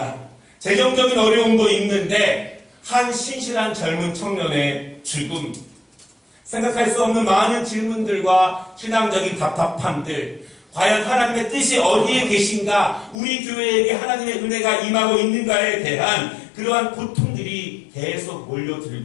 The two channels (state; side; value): drops out; right; at 13.2 s